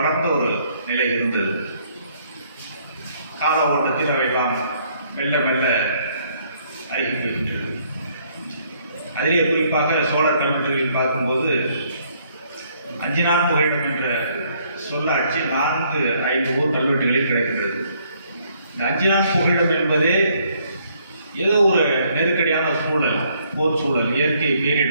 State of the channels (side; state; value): both; inverted; correlation -0.67